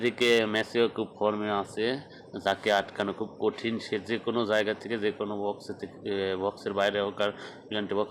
মেসিও খুব ফর্মে আছে, যাকে আটকানো খুব কঠিন। সে যে কোনো জায়গা থেকে, যে কোনো বক্সে থেকে, বক্সের বাইরে হোক আর পেনাল্টি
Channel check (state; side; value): identical; both; correlation 1.00